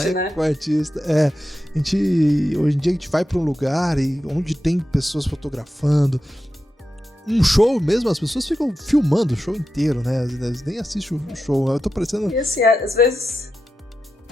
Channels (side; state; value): both; normal; correlation 0.90